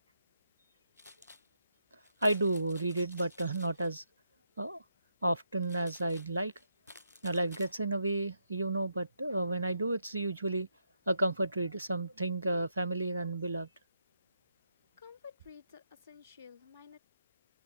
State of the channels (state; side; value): inverted; both; correlation -0.80